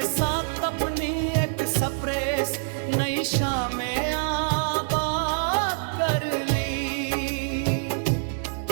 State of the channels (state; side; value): silent; left; 59 dB below the other